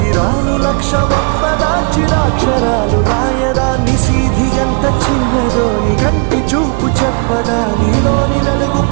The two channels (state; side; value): quieter; left; 37.1 dB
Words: లక్ష వంపదా, చిరాక్షరాలు రాయదా. నిశీధి ఎంత చిన్నదో నీ కంటి చూపు చెప్పదా. నీలోని వెలుగు